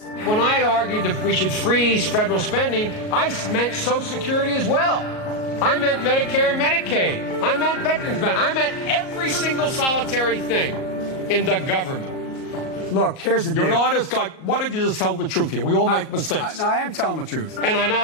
When I argued that we should freeze federal spending, I meant Social Security as well. I meant Medicare and Medicaid. I meant veterans benefits. I meant every single solitary thing in the government. Look, here's the deal. You're an honest guy. Why don't you just tell the truth here? We all make mistakes. I am telling the truth. And I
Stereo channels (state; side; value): late; right; 38 ms